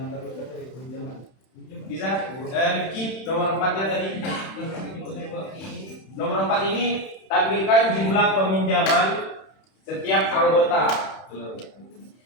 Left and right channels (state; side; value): late; right; 31 ms